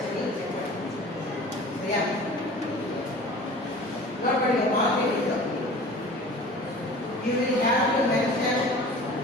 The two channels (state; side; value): normal; both; correlation 0.42